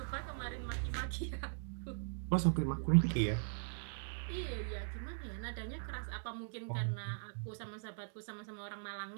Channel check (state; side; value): silent; left; digital silence